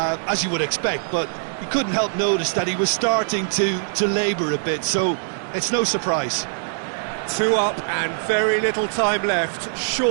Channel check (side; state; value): left; silent; digital silence